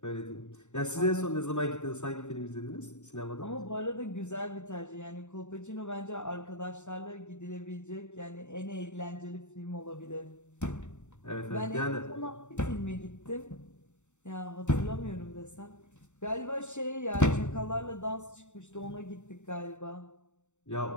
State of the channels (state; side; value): late; right; 0.84 ms